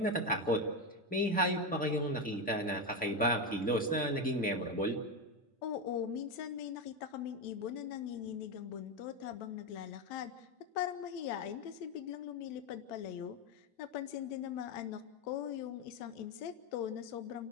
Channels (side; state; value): both; normal; correlation 0.12